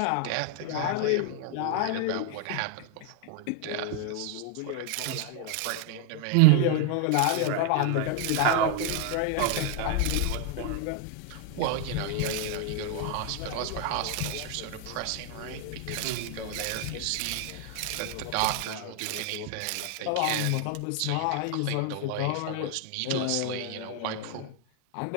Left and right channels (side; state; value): both; different; correlation 0.00